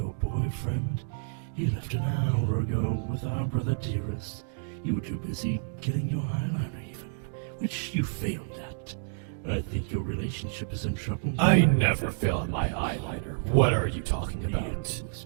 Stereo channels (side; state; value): left; silent; digital silence